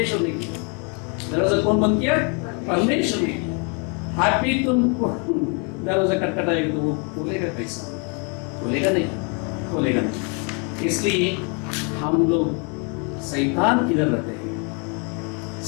ने किया। दरवाजा कौन बंद किया? परमेश्वर ने किया। अभी तुमको दरवाजा खटखटाएगा तो वो खोलेगा कैसा? खोलेगा नहीं, खोलेगा नहीं। इसलिए हम लोग शैतान किधर रहते हैं,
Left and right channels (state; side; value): quieter; right; 35.8 dB